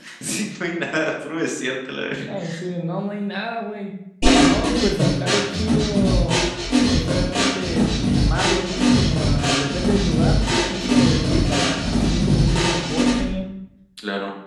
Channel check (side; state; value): both; identical; correlation 1.00